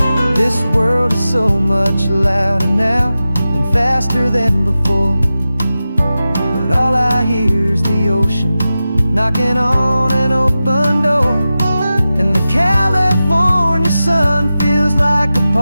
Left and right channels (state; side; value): inverted; both; correlation -0.93